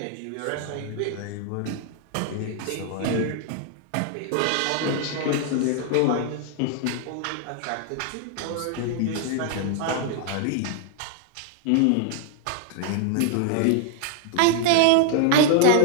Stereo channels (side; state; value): both; different; correlation 0.00